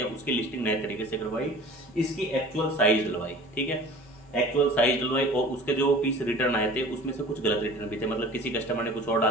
उसकी लिस्टिंग नए तरीके से करवाई, इसकी एक्चुअल साइज डलवाई, ठीक है, एक्चुअल साइज डलवाई। और उसके जो पीस रिटर्न आए थे उसमें से कुछ गलत रिटर्न भी थे, मतलब किसी कस्टमर ने कुछ और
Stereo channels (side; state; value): both; normal; correlation 0.43